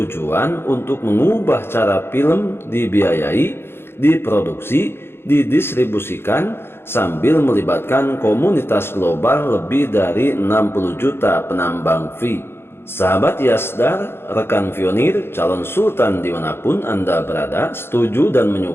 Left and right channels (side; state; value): right; late; 0.11 ms